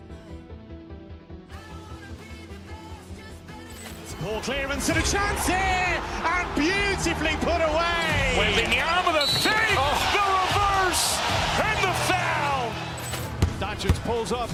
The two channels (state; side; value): identical; both; correlation 1.00